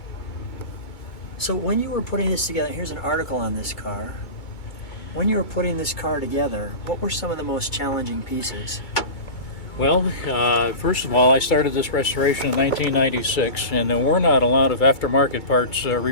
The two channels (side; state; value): right; late; 2.2 ms